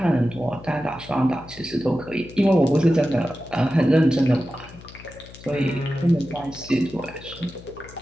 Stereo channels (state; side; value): noise; left; hum, 19 dB below the sound